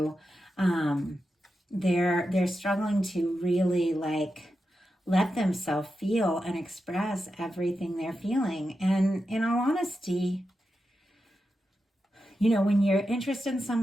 they're struggling to really let themselves feel and express everything they're feeling. And in all honesty, when you're interested in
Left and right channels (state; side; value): normal; both; correlation 0.89